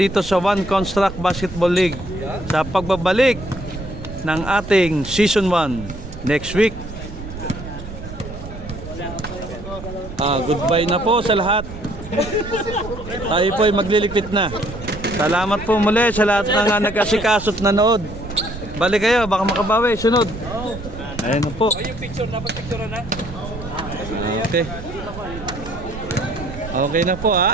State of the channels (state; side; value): noise; right; rumble, 11 dB below the sound